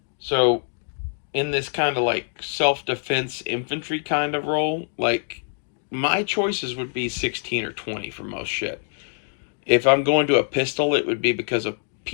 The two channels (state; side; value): silent; right; digital silence